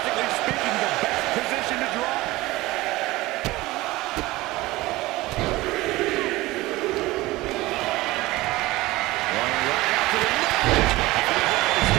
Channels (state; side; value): quieter; left; 19.4 dB